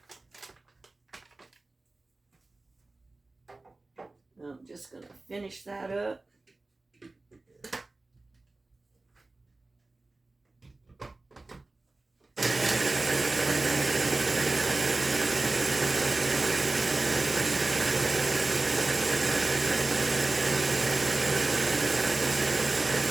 I'm just going to finish that up.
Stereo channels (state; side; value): quieter; left; 3.2 dB